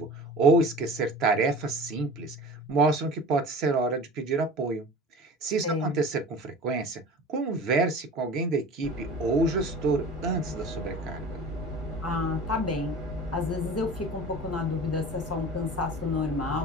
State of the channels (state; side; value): normal; both; correlation 0.38